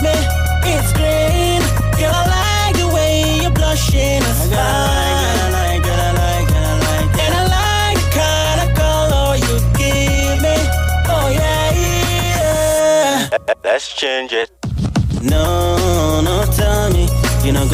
me. It's green. Girl, I like the way you're blushing. It's fine. I like. And I like the kind of color you give me. Oh yeah. Let's change it. No, tell me you not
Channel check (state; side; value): identical; both; correlation 1.00